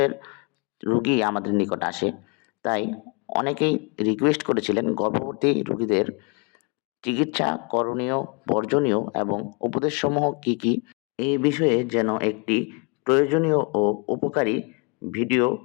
রোগী আমাদের নিকট আসে। তাই অনেকেই রিকোয়েস্ট করেছিলেন গর্ভবতী রোগীদের চিকিৎসা করণীয়, বর্জনীয় এবং উপদেশসমূহ কী কী, এই বিষয়ে যেন একটি প্রয়োজনীয় ও উপকারী ভিডিও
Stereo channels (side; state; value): right; quieter; 33.3 dB